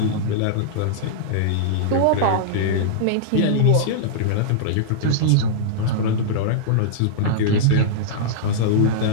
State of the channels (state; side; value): different; both; correlation -0.03